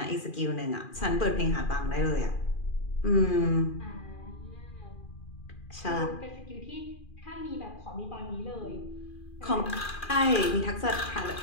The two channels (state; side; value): late; right; 2.4 ms